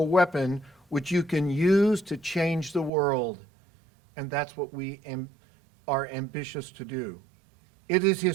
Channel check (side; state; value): left; drops out; at 2.9 s